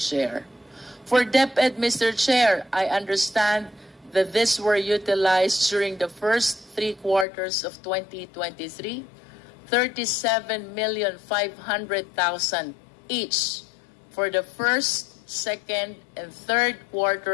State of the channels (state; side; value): drops out; right; at 7.2 s